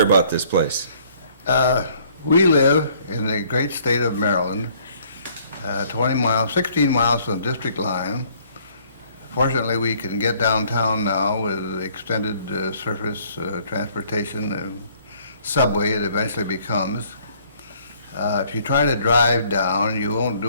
about this place? we live in the great state of Maryland, 16 miles from the district line. Fortunately, we can get downtown now with extended surface transportation and subway it eventually becomes. If you try to drive down, you won't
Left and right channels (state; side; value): inverted; both; correlation -0.61